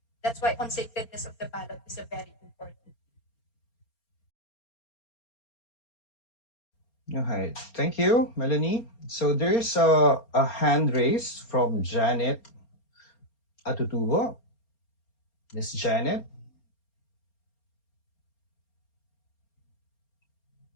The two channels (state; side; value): late; right; 4.3 ms